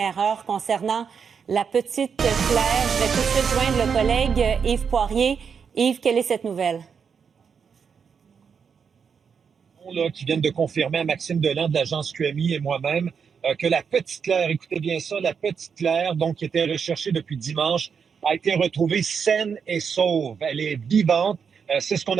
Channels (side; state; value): left; quieter; 6.5 dB